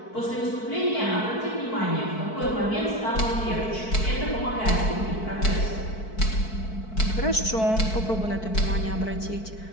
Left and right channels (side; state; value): right; late; 4.6 ms